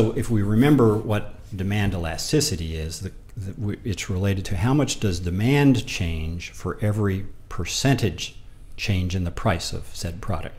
if we remember what demand elasticity is, it's related to how much does demand change for every percentage change in the price of said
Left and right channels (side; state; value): both; identical; correlation 1.00